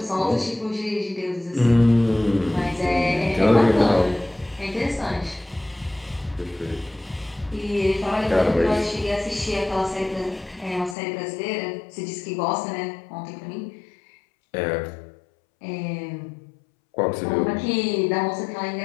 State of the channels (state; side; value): drops out; right; at 11.0 s